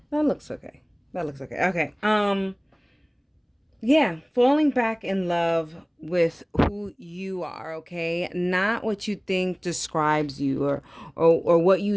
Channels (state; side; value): identical; both; correlation 1.00